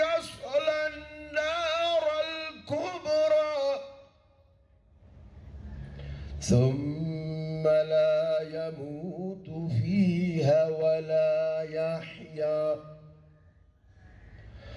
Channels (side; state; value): both; identical; correlation 1.00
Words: النار الكبرى ثم لا يموت فيها ولا يحيا